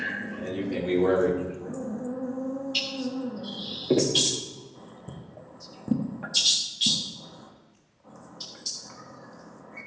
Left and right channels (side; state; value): both; identical; correlation 1.00